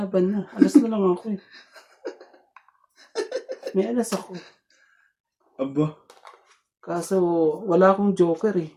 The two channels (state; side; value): identical; both; correlation 1.00